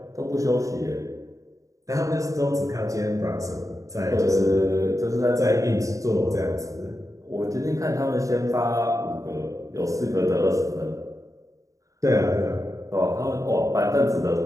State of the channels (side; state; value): left; late; 0.16 ms